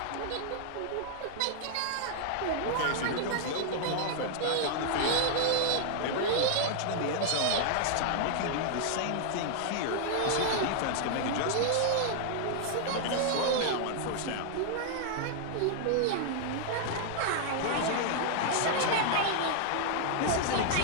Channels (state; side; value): different; both; correlation 0.00